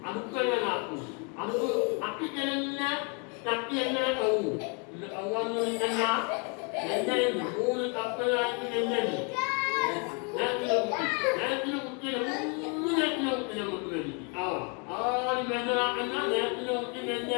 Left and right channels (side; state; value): right; quieter; 35.6 dB